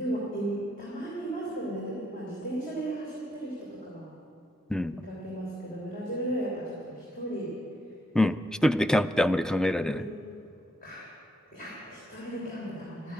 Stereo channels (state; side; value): normal; both; correlation 0.77